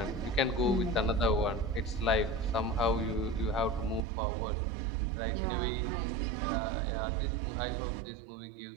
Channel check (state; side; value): drops out; left; at 4.0 s